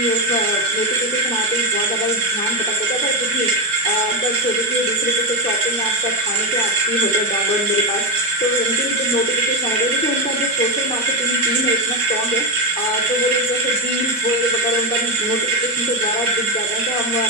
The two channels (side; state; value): both; normal; correlation 0.10